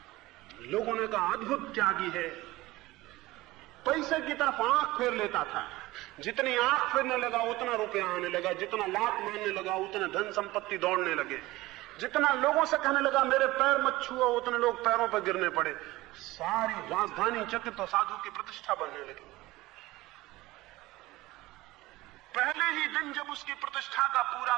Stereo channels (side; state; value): left; quieter; 18.9 dB